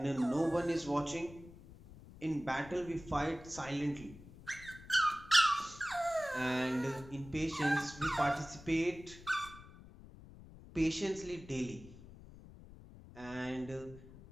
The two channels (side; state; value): left; noise; rumble, 18 dB below the sound